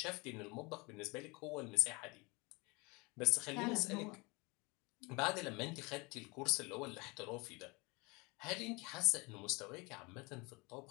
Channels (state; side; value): quieter; right; 26.8 dB